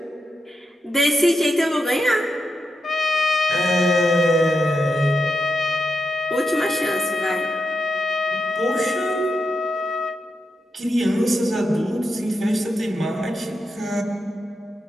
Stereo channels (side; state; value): both; normal; correlation 0.86